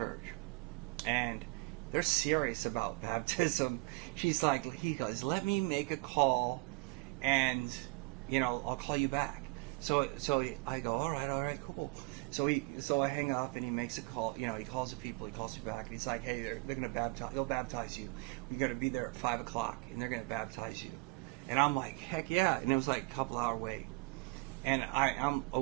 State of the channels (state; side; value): quieter; left; 27.3 dB